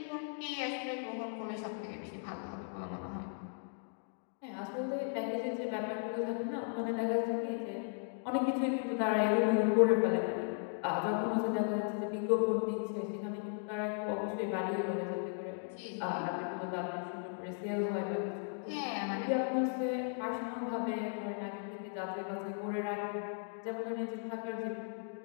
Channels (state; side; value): silent; right; 53 dB below the other